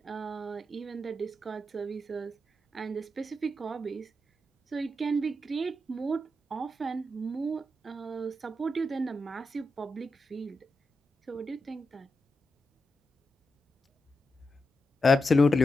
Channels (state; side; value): normal; both; correlation 0.87